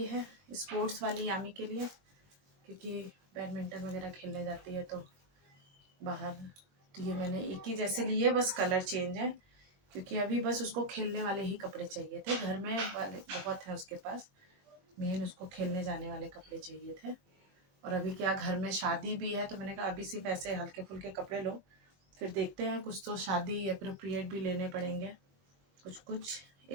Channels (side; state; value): left; late; 22 ms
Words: है स्पोर्ट्स वाली यामी के लिए, क्योंकि बैडमिंटन वगैरह खेलने जाती है तो बाहर। तो ये मैंने एक ही जैसे लिए, बस कलर चेंज है, क्योंकि अभी बस उसको खेलने वाले ही कपड़े चाहिए थे। घर में वाले बहुत हैं उसके पास, मेन उसको खेलने जाने वाले कपड़े चाहिए थे। और अभी क्या घर में शादी भी है, तो मैंने कहा अभी सिर्फ ऐसे हल्के फुल्के कपड़े लो, फिर देखते हैं कुछ तो शादी अप्रोप्रिएट भी लेने पड़ेंगे, कुछ